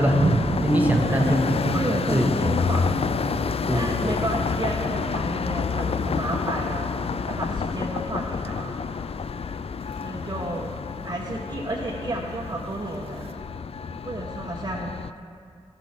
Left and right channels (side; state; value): both; normal; correlation 0.71